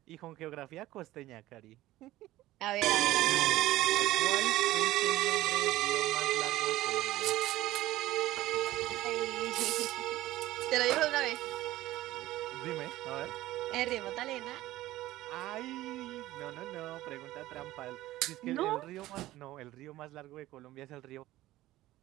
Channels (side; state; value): left; quieter; 16.1 dB